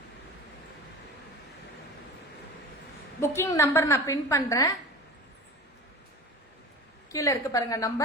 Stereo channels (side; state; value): both; normal; correlation 0.34